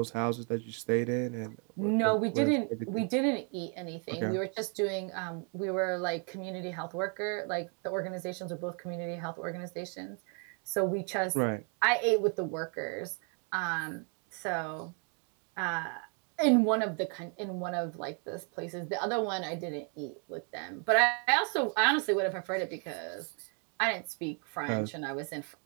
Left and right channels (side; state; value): left; quieter; 39.9 dB